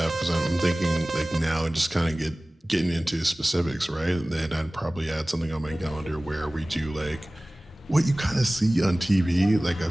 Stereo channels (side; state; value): both; normal; correlation 0.98